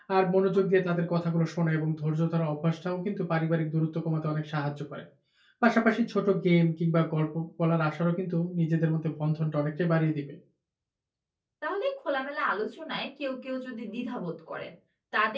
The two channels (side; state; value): both; identical; correlation 1.00